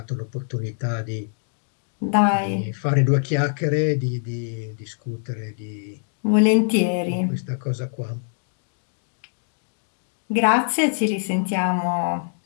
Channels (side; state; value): right; silent; digital silence